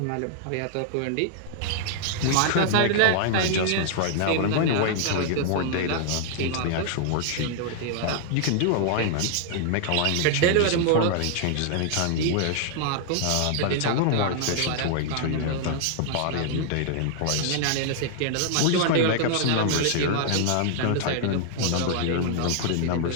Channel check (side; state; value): both; different; correlation 0.00